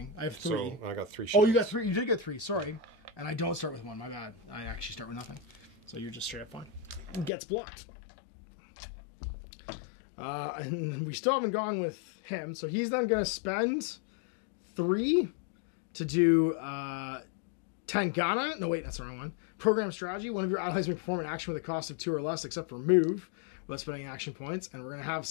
I have 3. So I got 3 shields. Oh, you got 3. You did get 3. Sorry. And I don't start with 1. My bad. I actually start with nothing. So you're just straight up fine. Gets blocked. And we still haven't gone with him. So he's then going to spend 3 to do Tangana. No, wait, that's the wrong one. Program strategy. One of your allies may perform an action with a cost of 2 or less, except for move, without spending action points. And we're going to have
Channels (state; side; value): drops out; right; at 7.3 s